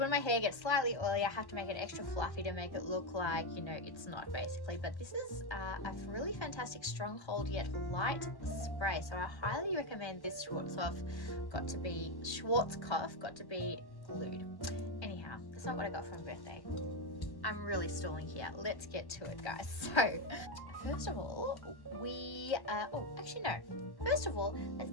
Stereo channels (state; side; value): late; right; 1.1 ms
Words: my hair gets slightly oily, I have to make it extra fluffy to make it look like, you know, it's not, basically. But this is a really fantastic stronghold yet light spray, so I highly recommend this Schwarzkopf Got to Be Glued. Anyhow, that's not what I got for my birthday. I'm really stalling here. Let's get to it, guys. So first of all, first of all, let's